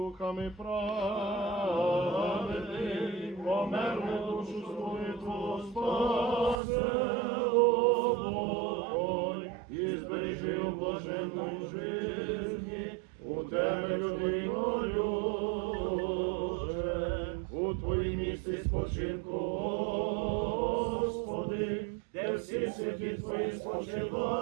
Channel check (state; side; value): drops out; left; at 6.6 s